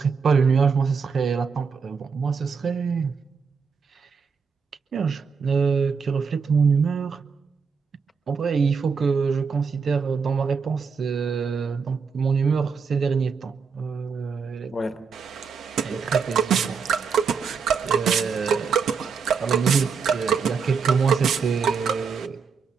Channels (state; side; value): quieter; left; 5.7 dB